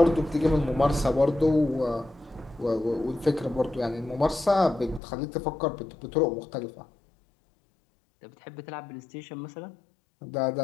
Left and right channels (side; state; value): right; drops out; at 5.0 s